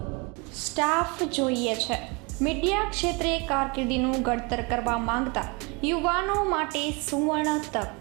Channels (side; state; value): left; quieter; 29.4 dB